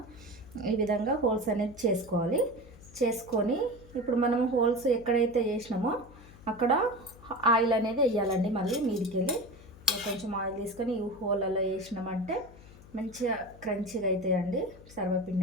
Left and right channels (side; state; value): left; noise; hum, 20 dB below the sound